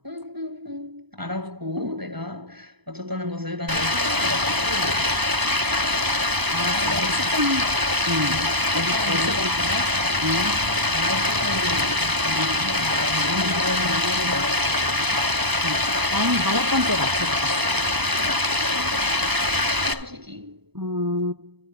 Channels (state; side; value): late; left; 0.99 ms